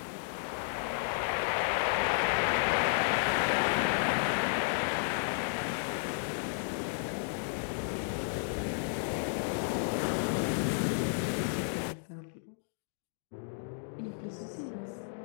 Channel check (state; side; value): silent; right; digital silence